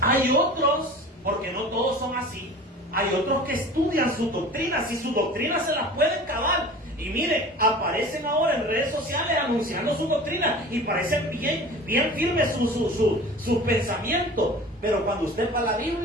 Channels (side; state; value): both; normal; correlation 0.39